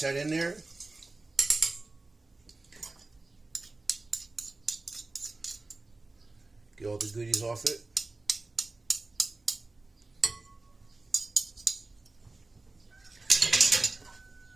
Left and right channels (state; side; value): quieter; left; 3.3 dB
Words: in there. Get all the goodies off it.